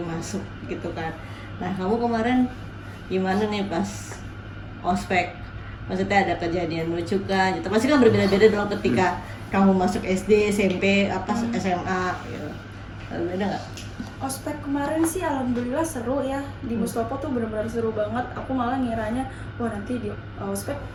masuk gitu kan. Nah kamu kemarin gimana nih pas ospek? Maksudnya ada kejadian lucu kan? Gitu. Pasti kan berbeda-beda dong ketika kamu masuk SD, SMP, SMA gitu. Beda nggak? Ospek kemarin sih alhamdulillah seru ya, di Mustopo tuh benar-benar seru banget. Aku malah ngiranya wah nanti di ospek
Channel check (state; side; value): identical; both; correlation 1.00